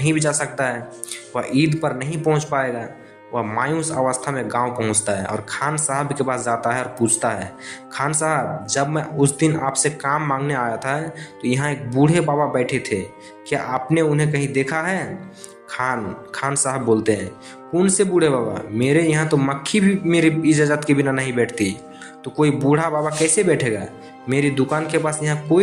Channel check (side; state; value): both; identical; correlation 1.00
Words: भी जा सकता है, वह ईद पर नहीं पहुंच पाएगा। वह मायूस अवस्था में गांव पहुंचता है और खान साहब के पास जाता है और पूछता है, खान साहब, जब मैं उस दिन आपसे काम मांगने आया था तो यहाँ एक बूढ़े बाबा बैठे थे, क्या आपने उन्हें कहीं देखा है? खान साहब बोलते हैं, कौन से बूढ़े बाबा, मेरे यहाँ तो मक्खी भी मेरी इजाज़त के बिना नहीं बैठती, तो कोई बूढ़ा बाबा कैसे बैठेगा? मेरी दुकान के पास यहाँ